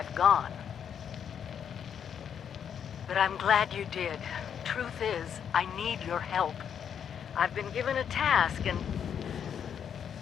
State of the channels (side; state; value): right; quieter; 8.2 dB